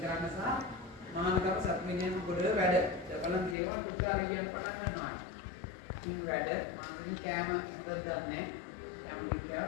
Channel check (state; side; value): drops out; right; at 3.6 s